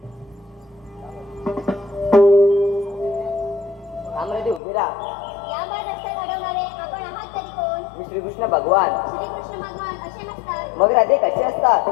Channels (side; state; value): right; drops out; at 4.6 s